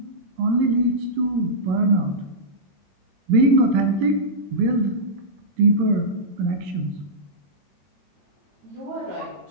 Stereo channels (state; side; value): late; left; 22 ms